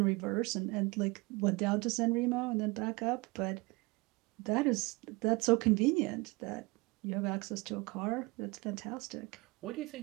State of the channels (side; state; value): left; quieter; 24.8 dB